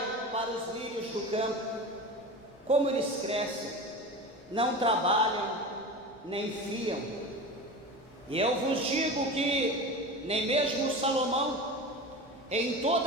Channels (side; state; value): left; noise; rumble, 29 dB below the sound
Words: para os lírios do campo, como eles crescem, não trabalham, nem fiam. E eu vos digo que nem mesmo Salomão, em